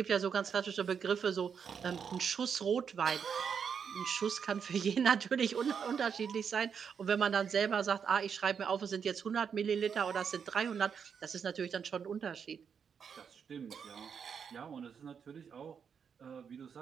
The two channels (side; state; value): left; quieter; 6.9 dB